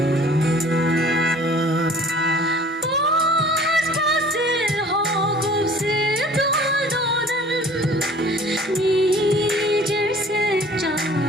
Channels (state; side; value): normal; both; correlation 0.49